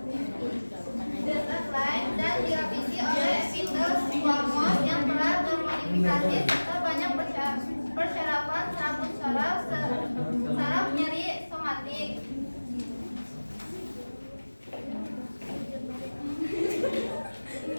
lain dan direvisi oleh epitel squamous yang telah termodifikasi serta banyak persyaratan saraf nyeri somatik.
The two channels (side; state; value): both; inverted; correlation -1.00